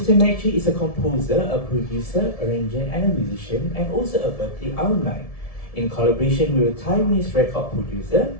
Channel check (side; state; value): right; late; 1.7 ms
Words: Mercury is a composer, a producer, arranger, and a musician, and also a Berklee alumni. In collaboration with a Taiwanese record producer,